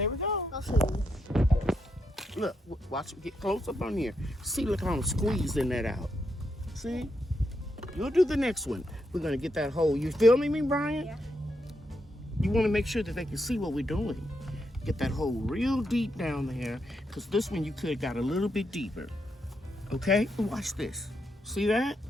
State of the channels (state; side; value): normal; both; correlation 0.82